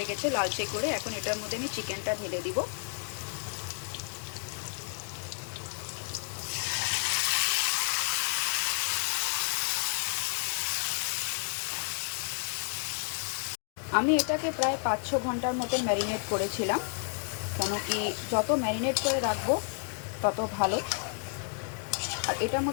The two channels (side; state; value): right; silent; 57 dB below the other